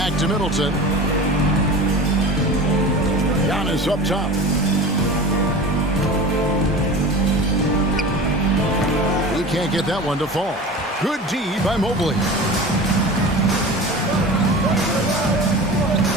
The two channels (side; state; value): both; normal; correlation 0.34